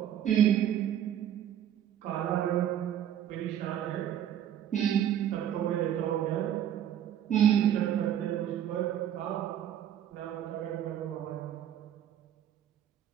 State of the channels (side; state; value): left; quieter; 10.4 dB